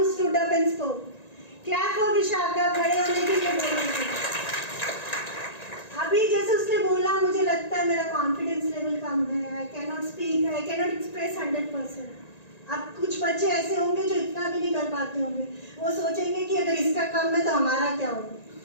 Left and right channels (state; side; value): late; right; 1.9 ms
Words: stood up and spoke. Clap for Vishakha. खड़े होने के लिए बोलेंगे. अभी जैसे उसने बोला, मुझे लगता है मेरा कॉन्फिडेंस लेवल कम है. I cannot speak. I cannot express 100%. अब कुछ बच्चे ऐसे होंगे जो इतना भी नहीं कर पाते होंगे. वो सोचेंगे कि अगर इसका कम है तो हमारा क्या होगा,